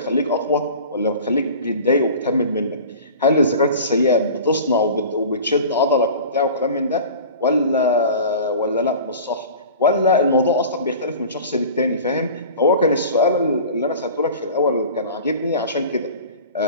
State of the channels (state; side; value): inverted; both; correlation -0.39